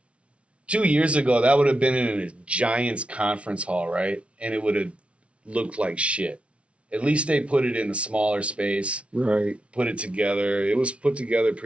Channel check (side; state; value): left; late; 0.061 ms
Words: 2 years ago, that would have been in a Giants conference hall, right? And it would have looked like shit. At least they put it in a smaller space. Right. Put it together. It was put together